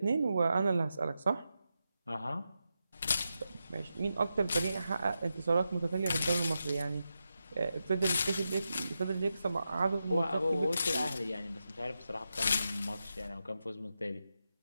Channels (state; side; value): inverted; both; correlation -0.88